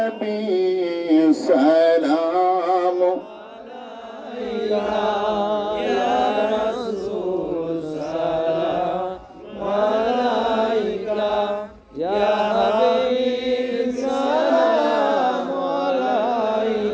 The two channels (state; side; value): identical; both; correlation 1.00